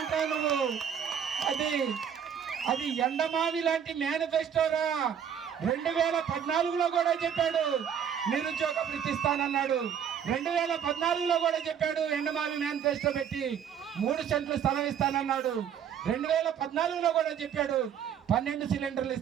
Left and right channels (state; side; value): quieter; left; 8.3 dB